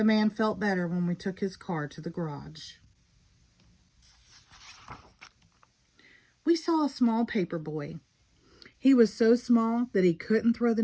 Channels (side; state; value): both; identical; correlation 1.00